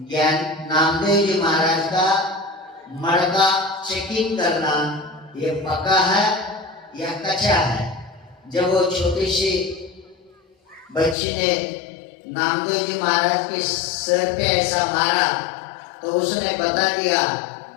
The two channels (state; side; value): drops out; right; at 11.2 s